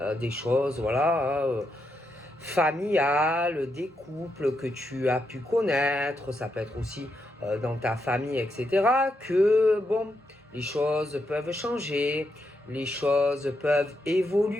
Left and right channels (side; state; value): both; normal; correlation 0.82